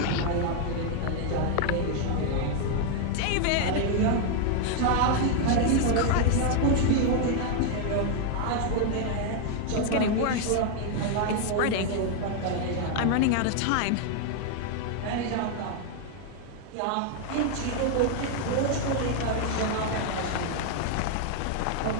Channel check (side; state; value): both; different; correlation 0.01